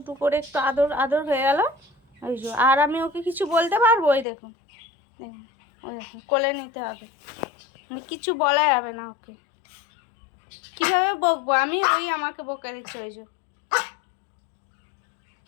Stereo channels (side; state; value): right; drops out; at 4.2 s